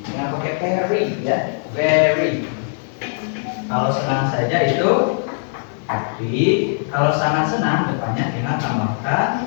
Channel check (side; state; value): right; silent; 66 dB below the other